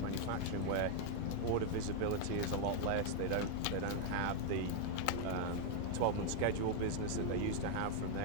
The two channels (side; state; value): both; different; correlation 0.00